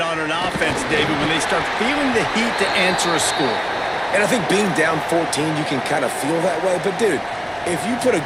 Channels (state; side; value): identical; both; correlation 1.00